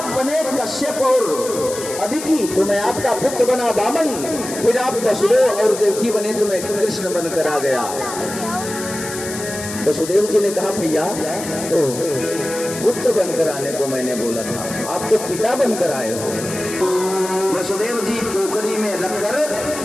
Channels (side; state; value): left; noise; hiss, 9 dB below the sound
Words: बने कश्यप और अदिति, तो मैं आपका पुत्र बना वामन, फिर आप वसुदेव और देवकी बने तो मैं कृष्ण बनकर आ गया। वसुदेव जी ने कहा, भैया तो पुत्र बनकर आने को मैंने बोला था, आप तो पिता बनकर आए हो। वसुदेव जी टोकरी में रखकर